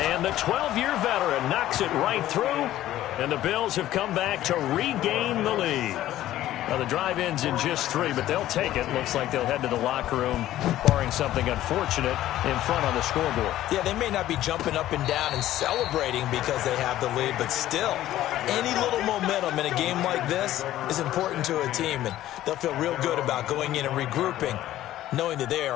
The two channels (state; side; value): quieter; right; 13.8 dB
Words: the 12-year veteran knocks it right through, and the Bills have come back to regain the lead. Now, the drive ends in just 3, but they'll take it. Looks like they'll head to the locker room, barring something unfortunate, in front on the scoreboard. Yeah, they may not be jumping up and down and celebrating because they have the lead, but still, any little momentum in a game like this is important to a team, and they'll feel real good about going in and regrouping, knowing that they